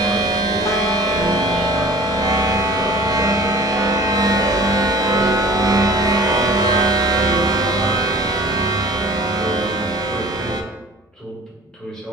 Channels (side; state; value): both; normal; correlation 0.46